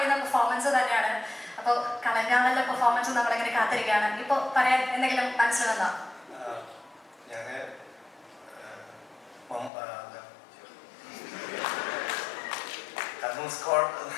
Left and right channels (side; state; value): right; drops out; at 9.7 s